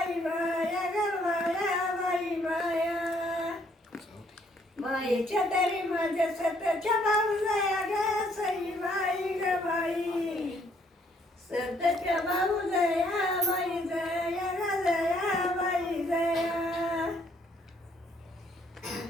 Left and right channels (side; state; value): both; normal; correlation 0.67